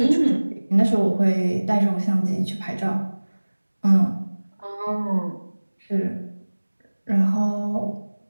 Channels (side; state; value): both; inverted; correlation -1.00